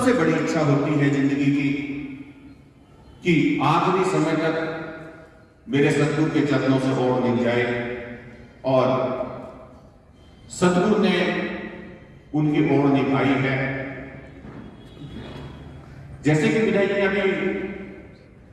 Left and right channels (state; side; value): identical; both; correlation 1.00